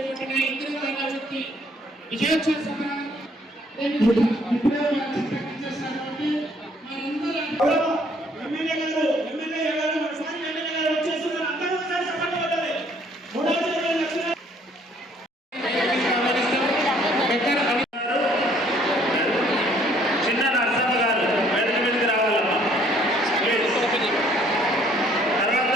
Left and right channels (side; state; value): both; normal; correlation 0.62